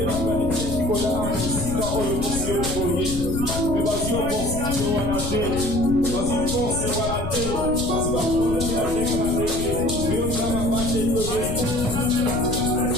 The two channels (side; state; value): left; noise; rumble, 5 dB below the sound